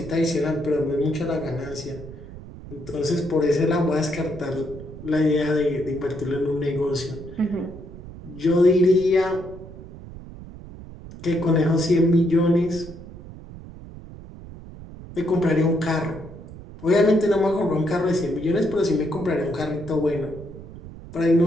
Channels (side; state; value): right; noise; rumble, 15 dB below the sound